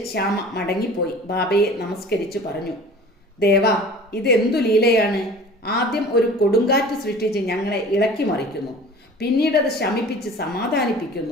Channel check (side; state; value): both; normal; correlation 0.43